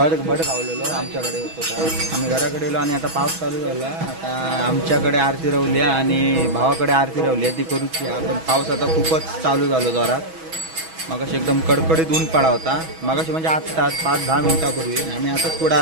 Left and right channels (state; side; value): late; left; 6.2 ms